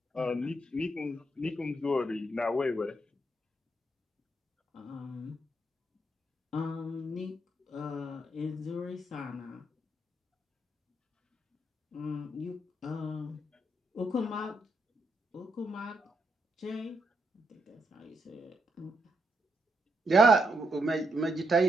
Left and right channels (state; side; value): normal; both; correlation 0.79